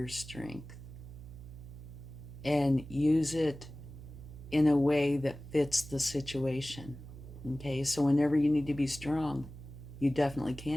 strength and use it in a way that fits the situation. Okay, so whenever you need to be strong, you definitely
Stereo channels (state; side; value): noise; right; hum, 14 dB below the sound